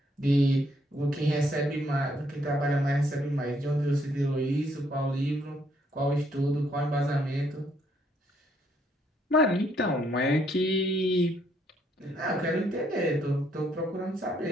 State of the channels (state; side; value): normal; both; correlation 0.70